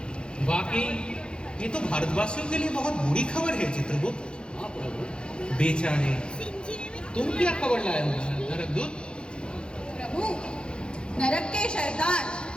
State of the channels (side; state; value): right; late; 0.053 ms